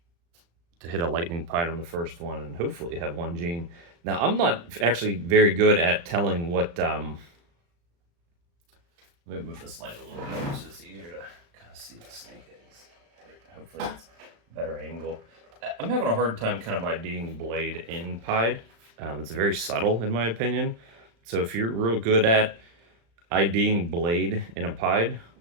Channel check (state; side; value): late; left; 35 ms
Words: To hit a lightning pied on the first one and hopefully have 1 gene. Now, I'm not actually very good at telling what... Let me move this light a little bit so it's easier to kind of see the snake eggs. Hopefully it's a better angle. I'm having a hard time kind of IDing Blade in pied. It's very subtle in my opinion. So if you're real good at IDing Blade in a pied,